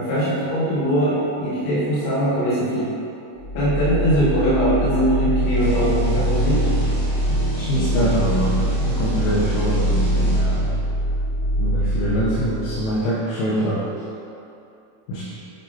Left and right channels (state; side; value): late; right; 28 ms